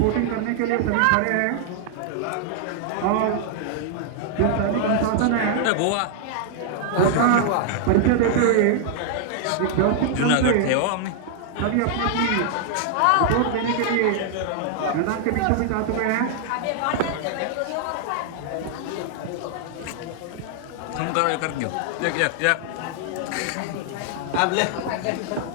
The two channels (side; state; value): both; different; correlation 0.00